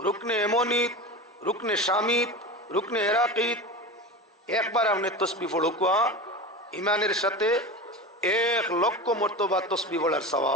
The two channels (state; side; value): normal; both; correlation 0.27